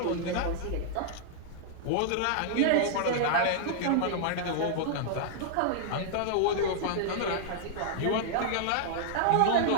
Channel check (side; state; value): both; different; correlation -0.01